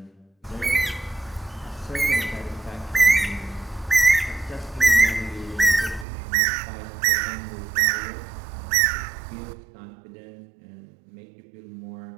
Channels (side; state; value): left; drops out; at 6.1 s